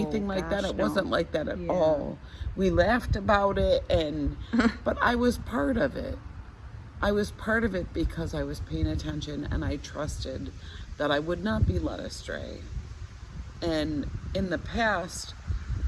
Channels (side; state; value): both; identical; correlation 1.00